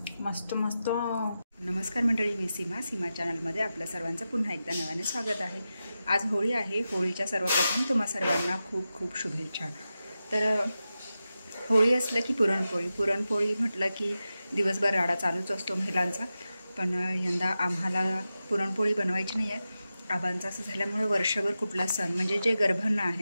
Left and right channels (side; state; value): both; inverted; correlation -0.92